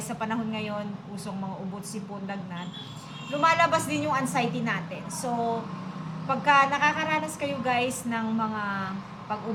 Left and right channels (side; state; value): both; identical; correlation 1.00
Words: sa panahon ngayon, usong mga ubot, sipon, lagnat, lumalabas din yung anxiety natin. So, pagka nakakaranas kayo guys ng mga